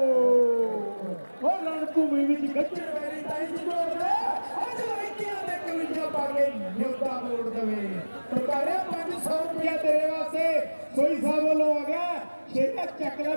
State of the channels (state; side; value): inverted; both; correlation -1.00